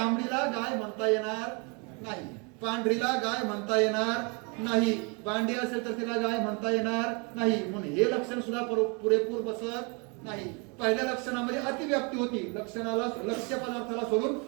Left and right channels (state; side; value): quieter; left; 32.8 dB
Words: गाय म्हणता येणार नाही, पांढरीला गाय म्हणता येणार नाही, बांडी असेल तर तिला गाय म्हणता येणार नाही. म्हणून हे लक्षण सुद्धा पुरेपूर बसत नाही. पहिल्या लक्षणामध्ये अतिव्याप्ती होती. लक्षणाला लक्ष्य पदार्थाला सोडून